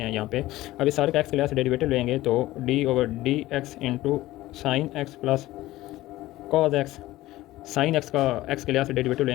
हैं यहाँ पे। अब इस सारे का x के लिहाज से डेरिवेटिव लेंगे तो d over d x into sine x plus cos x, sine x का x के लिहाज से डेरिवेटिव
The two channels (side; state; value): right; quieter; 16.8 dB